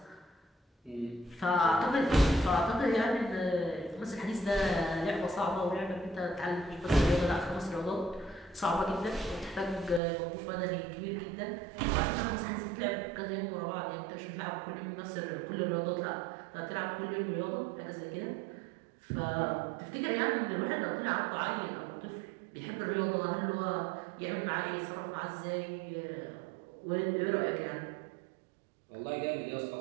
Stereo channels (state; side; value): drops out; left; at 10.0 s